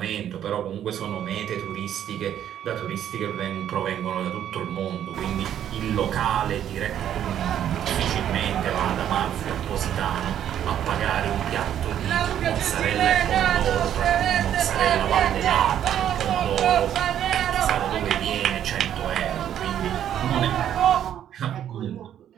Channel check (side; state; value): left; quieter; 10.4 dB